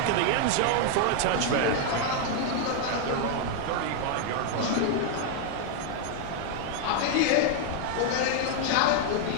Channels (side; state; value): both; different; correlation 0.00